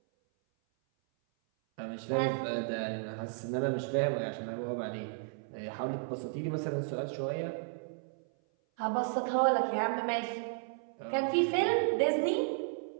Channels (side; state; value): left; silent; 55 dB below the other